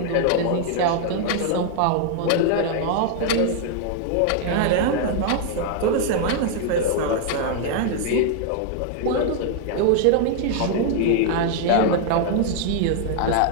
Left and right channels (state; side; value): different; both; correlation 0.00